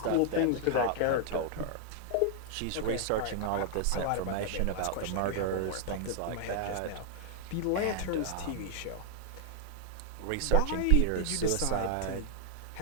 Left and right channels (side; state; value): both; different; correlation 0.00